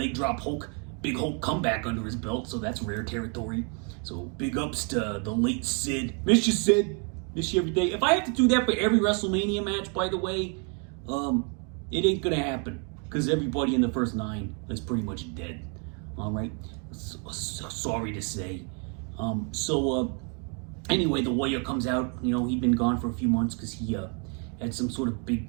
drop big Hulk comeback under his belt, so that's rare territory. So big ups to the late Sid. Miss you, Sid. Miss you every day. If I have to do that for every WrestleMania match, by the way, it ain't gonna happen, because everybody in the first 9 is pretty much dead. All right, so sorry to say. Anyway, the Warrior comes out. He'd been gone for a few months because he had some sort of big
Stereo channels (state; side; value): quieter; left; 38.4 dB